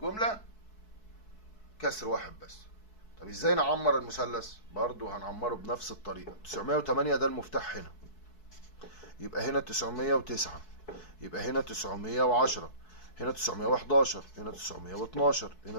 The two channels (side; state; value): right; late; 4.6 ms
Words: كسر واحد بس. طب ازاي نعمر المثلث؟ برضو هنعمره بنفس الطريقة. 908 ده المفتاح هنا، يبقى هنا 909، يبقى هنا 910، هنا 911، هنا 912،